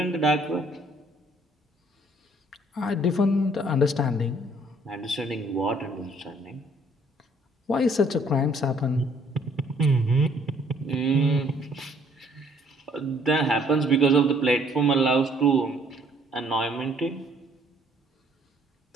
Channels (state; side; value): normal; both; correlation 0.62